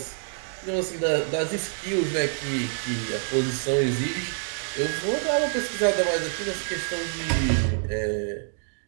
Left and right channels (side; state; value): left; silent; 60 dB below the other